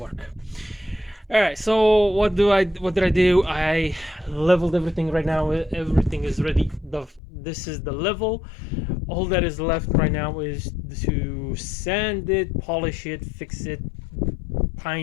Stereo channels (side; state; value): right; drops out; at 7.2 s